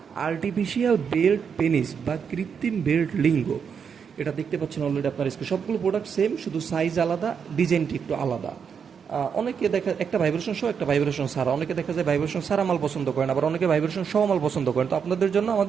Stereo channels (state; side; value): quieter; left; 6.8 dB